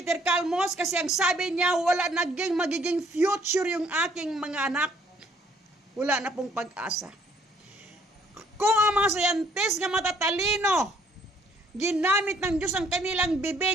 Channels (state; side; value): normal; both; correlation 0.63